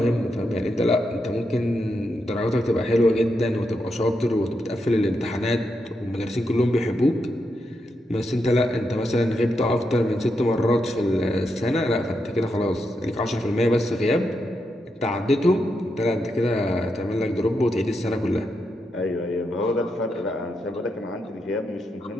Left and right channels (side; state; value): both; normal; correlation 0.84